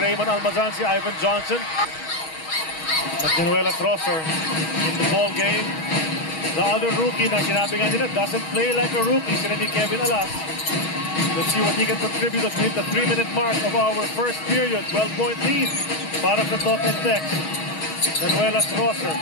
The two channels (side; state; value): right; late; 6.3 ms